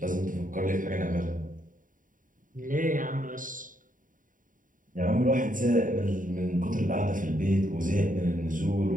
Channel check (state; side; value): late; left; 0.39 ms